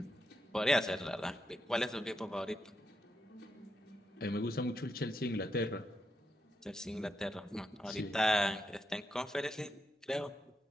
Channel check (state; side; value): normal; both; correlation 0.83